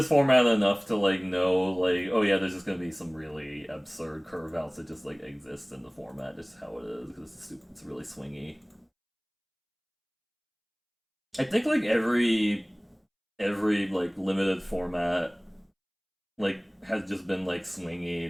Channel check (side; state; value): both; identical; correlation 1.00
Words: format enough to like know like oh yeah, there's just gonna be some really absurd curve outs that just like exist in the format, just how it is because it's really swingy. I think like every like limited format like has just been like swingy